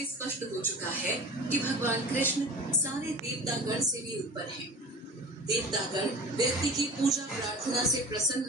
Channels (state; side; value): normal; both; correlation 0.37